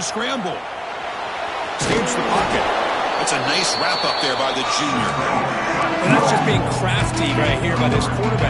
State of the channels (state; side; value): identical; both; correlation 1.00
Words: Escapes the pocket. It's a nice wrap up there by the junior. And that's just being crafty right here by this